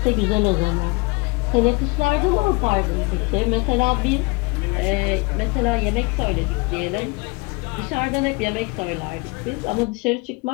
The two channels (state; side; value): quieter; right; 26.6 dB